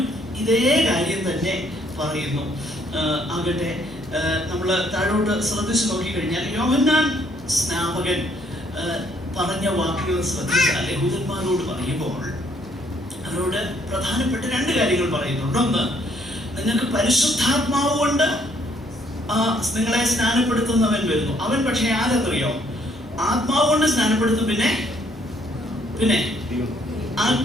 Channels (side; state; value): left; noise; hum, 22 dB below the sound